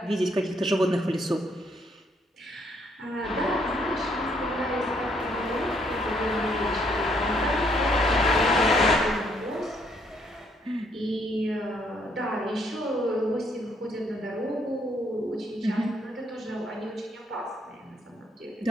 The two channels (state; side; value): normal; both; correlation 0.69